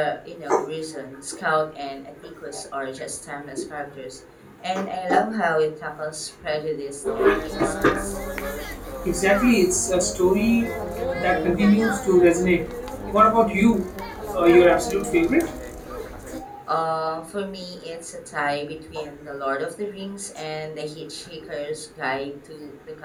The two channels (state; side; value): identical; both; correlation 1.00